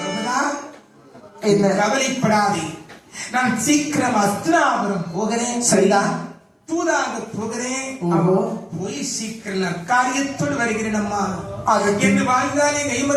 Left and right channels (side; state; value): both; identical; correlation 1.00